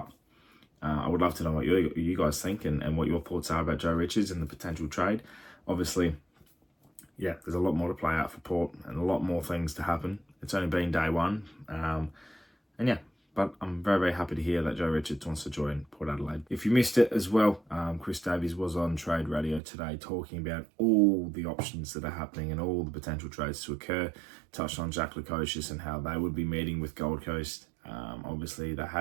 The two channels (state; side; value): drops out; left; at 19.6 s